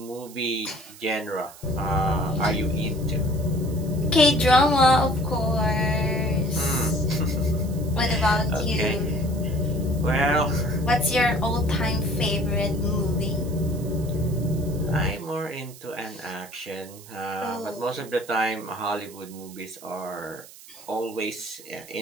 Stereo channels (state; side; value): noise; right; hiss, 19 dB below the sound